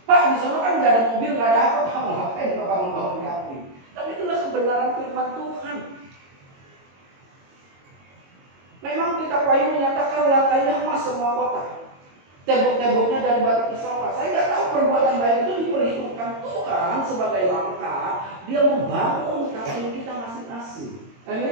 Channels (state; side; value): late; left; 22 ms